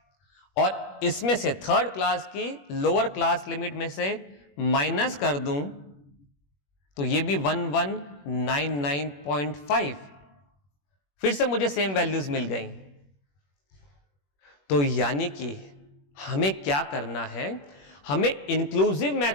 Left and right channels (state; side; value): late; right; 21 ms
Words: और इसमें से थर्ड क्लास की लोअर क्लास लिमिट में से माइनस कर दूं तो ये भी 1199.5। फिर से मुझे सेम वैल्यूज मिल गई। तो यानी कि हमें क्या करना है? हमें इंक्लूसिव